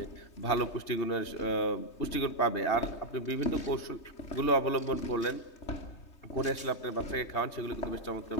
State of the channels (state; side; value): late; right; 3.2 ms